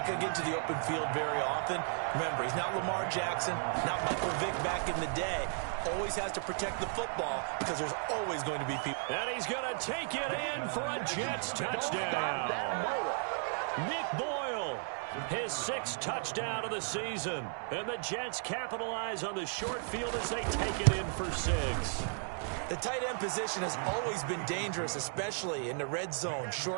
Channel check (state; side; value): silent; left; 55 dB below the other